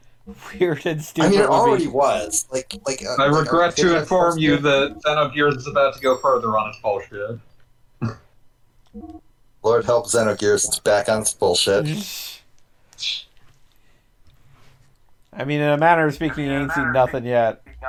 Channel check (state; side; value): identical; both; correlation 1.00